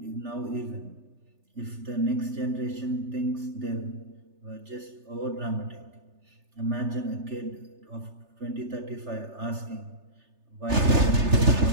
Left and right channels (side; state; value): left; late; 3.3 ms